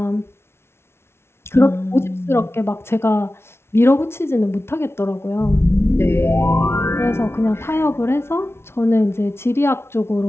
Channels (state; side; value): late; right; 0.12 ms